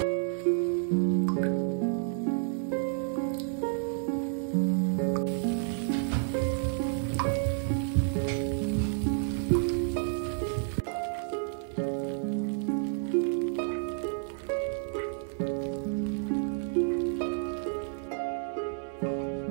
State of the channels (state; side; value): silent; left; 58 dB below the other